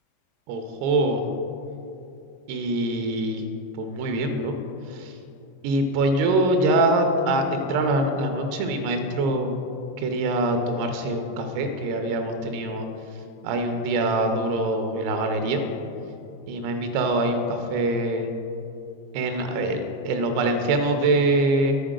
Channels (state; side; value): late; left; 22 ms